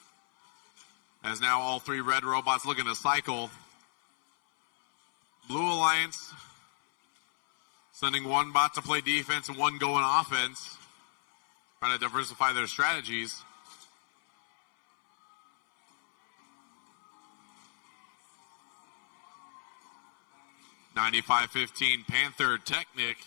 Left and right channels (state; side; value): silent; right; 56 dB below the other